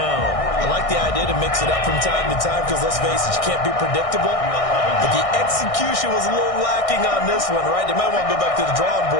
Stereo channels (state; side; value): late; right; 1.6 ms